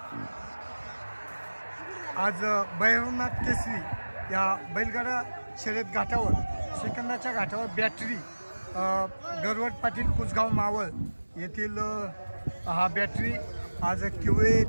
आज भैरवनाथ केसरी या बैलगाडा शर्यत घाटावर सेकंदाच्या घाटावर बॅटरी गरवट पाटील कुसगाव मावळ येथील हा बॅटरी आज किवळे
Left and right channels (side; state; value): both; inverted; correlation -1.00